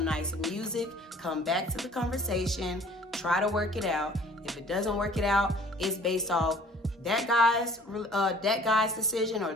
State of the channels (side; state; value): both; normal; correlation 0.52